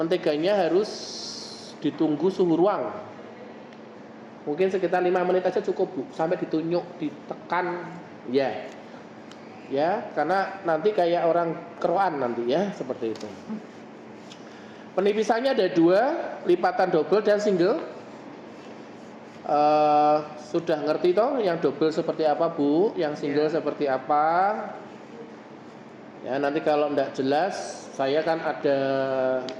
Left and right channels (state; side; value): identical; both; correlation 1.00